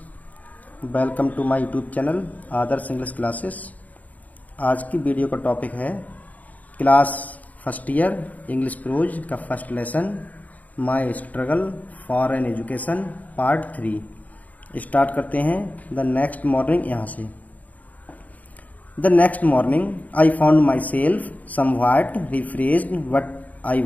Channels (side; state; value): right; late; 0.074 ms